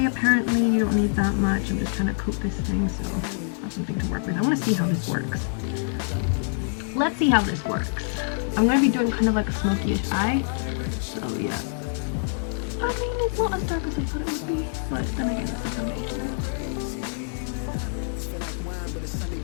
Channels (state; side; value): silent; right; digital silence